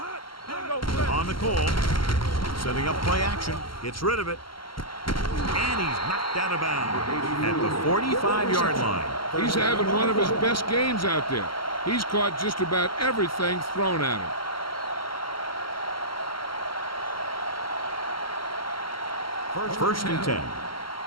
On the call. Setting up play action. Gets rid of it. And he's knocked out of bounds at the 45-yard line. He's having one of his best games out there. He's caught just about everything thrown at him. First and 10.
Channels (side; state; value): right; late; 0.73 ms